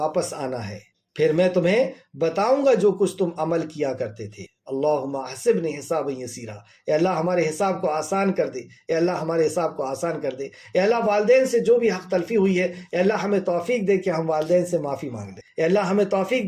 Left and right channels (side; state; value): both; identical; correlation 1.00